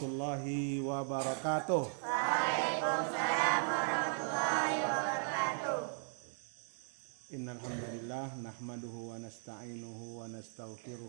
wabarakatuh. Waalaikumsalam warahmatullahi wabarakatuh. Innal hamdalillah nahmaduhu wa nasta'inuhu wa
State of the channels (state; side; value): silent; left; 53 dB below the other